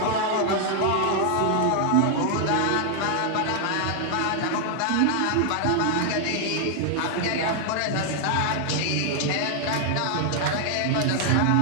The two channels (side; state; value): both; different; correlation 0.00